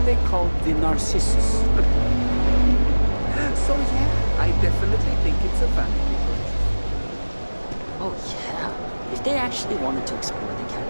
called the Narcissus. So yeah, I definitely think it's a vanity Oh, yeah. If they actually wanted to explore the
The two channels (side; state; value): both; inverted; correlation -1.00